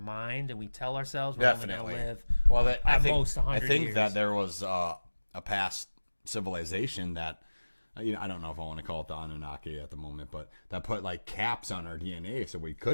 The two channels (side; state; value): both; inverted; correlation -1.00